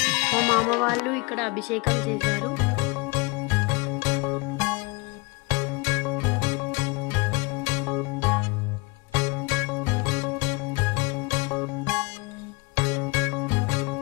మా మామ వాళ్ళు ఇక్కడ అభిషేకం చేశారు.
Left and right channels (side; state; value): right; quieter; 27.7 dB